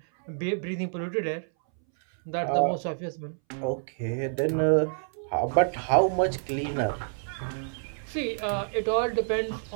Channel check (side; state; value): left; silent; 59 dB below the other